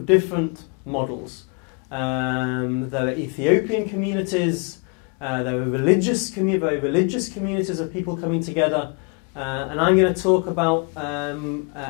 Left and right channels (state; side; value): quieter; right; 35.4 dB